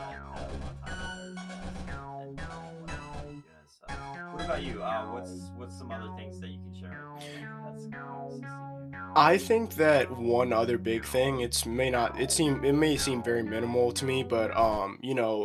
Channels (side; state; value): both; identical; correlation 1.00